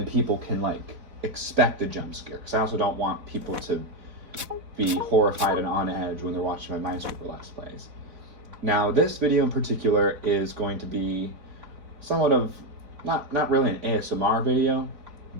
people can expect a jump scare, because I also don't want people to be horrified and on edge when they're watching my Minesweeper Let's Plays. Now, this video in particular is going to be somewhat of, not really an ASMR video,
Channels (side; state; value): left; late; 4.1 ms